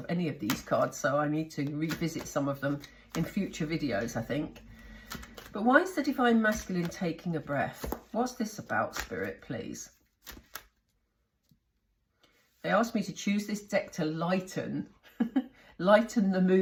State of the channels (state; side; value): identical; both; correlation 1.00